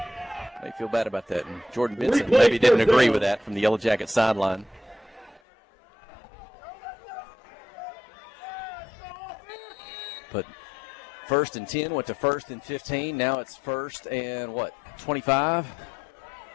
They feel bad about that. And Jordan Benson maybe didn't agree with that from the Yellow Jacket sideline. But 1st and 10 went to 1st and 15. Now it's 1st and 25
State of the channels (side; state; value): right; drops out; at 5.4 s